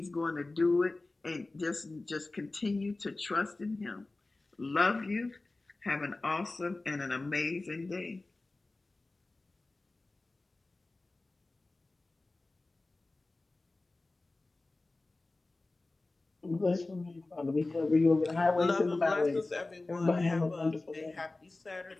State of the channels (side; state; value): right; quieter; 3.1 dB